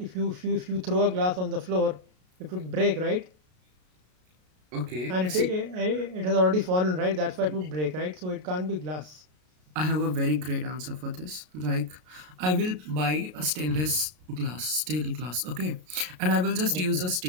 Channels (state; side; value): late; left; 33 ms